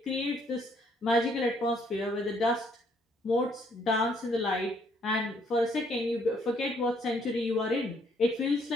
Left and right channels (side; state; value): both; normal; correlation 0.67